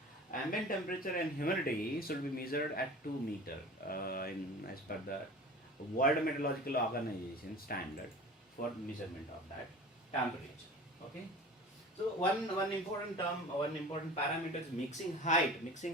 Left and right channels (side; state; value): both; normal; correlation 0.38